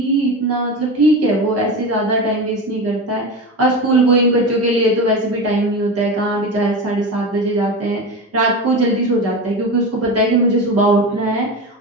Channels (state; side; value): normal; both; correlation 0.24